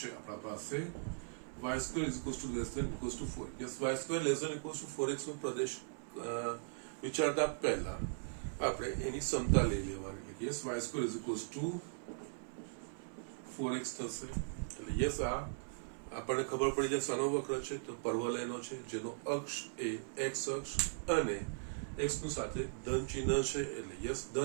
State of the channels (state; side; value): silent; left; 52 dB below the other